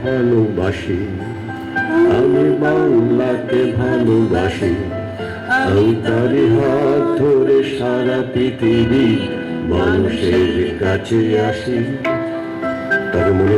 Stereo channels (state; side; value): identical; both; correlation 1.00